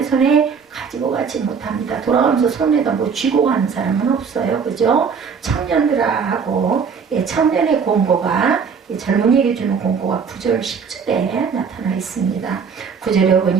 손에 가지고 가지 못합니다. 돌아가면서 손에다 뭐 쥐고 가는 사람은 없어요. 그죠? 청년들아 하고 청년의 공고가 젊은이에게 주는 공고가 9절 10절에 나타나 있습니다. 9절에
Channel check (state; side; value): quieter; left; 6.1 dB